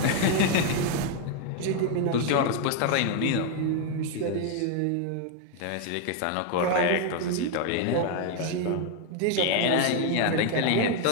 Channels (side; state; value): both; different; correlation 0.01